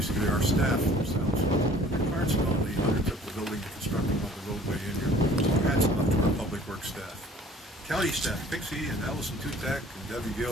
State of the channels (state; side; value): normal; both; correlation 0.52